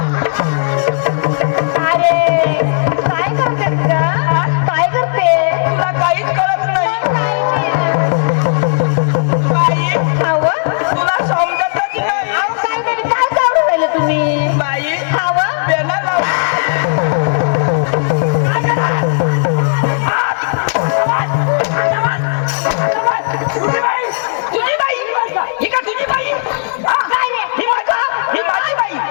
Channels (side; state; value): right; silent; digital silence